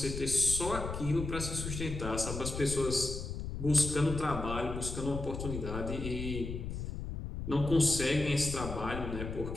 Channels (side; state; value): left; noise; rumble, 6 dB below the sound